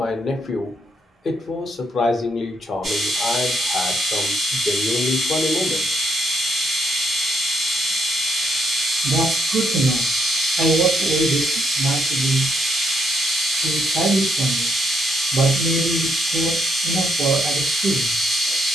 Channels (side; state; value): both; normal; correlation 0.75